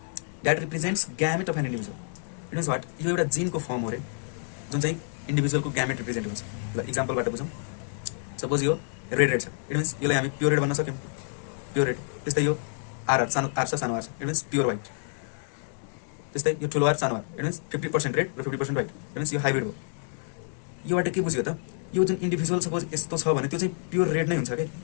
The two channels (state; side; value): silent; right; digital silence